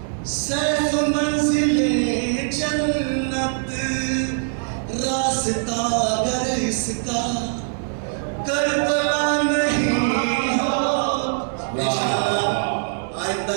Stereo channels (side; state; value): left; silent; 64 dB below the other